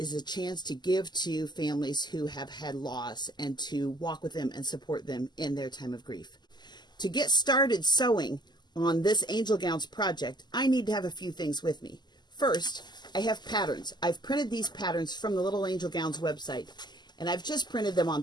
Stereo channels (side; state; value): right; late; 0.21 ms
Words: chance to give to families who have had loss and to walk with them and support them in their time of grief. To get started sewing on this Angel Gowns project, I need to have a few things with me. First, I have patterns. I've printed these patterns from the Little Angel Gowns website, and I've just printed them on